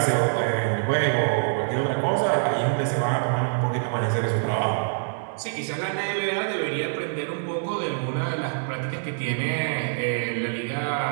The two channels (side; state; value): left; silent; digital silence